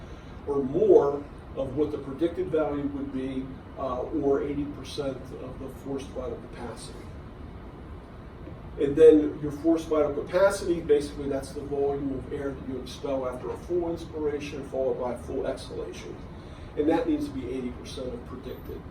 or more of what the predicted value would be, or 80% of the forced vital capacity. And then your forced vital capacity, basically that's the volume of air that you expel after a full inspiration followed by a full exhalation. And that needs to be 80% of predicted.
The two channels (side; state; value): both; identical; correlation 1.00